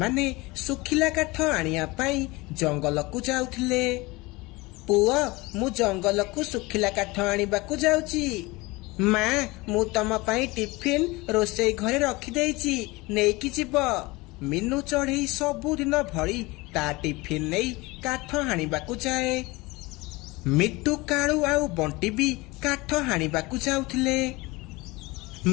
सुखिला काठ आनिया पाई जंगल को जाउथिले। पुआ मु जंगल को सुखिला काठ आनिबाकु जाउची। माँ मु तम पाई टिफिन रोसई घरे रखी देइची, नेकी जीव। मीनू चढ़ई सबुदिन भली ता टिफिन नहीं काठ हाणिबाकु जाए। मिट्टू कालू आउ बंटी भी काठ हाणिबाकु जाउथिले।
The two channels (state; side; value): quieter; right; 22.8 dB